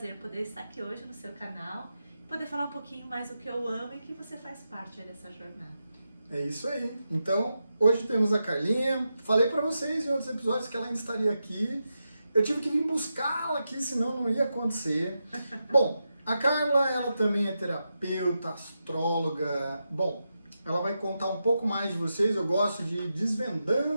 poder estar aqui hoje no seu canal, poder falar um pouquinho mais do que eu amo e que você faz parte aí dessa jornada. É isso aí. Então, hoje temos a Carlinha. Falei pra vocês em outros episódios que ela ainda estaria aqui. Eu tive que vir buscá-la aqui, senão não ia acontecer. Bom, a Carla, ela também é terapeuta, astróloga. Bom, ela vai contar um pouco mais de vocês. Eu gosto de ir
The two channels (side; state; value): both; inverted; correlation -0.88